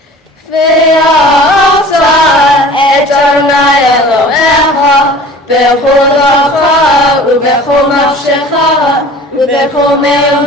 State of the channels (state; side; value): normal; both; correlation 0.44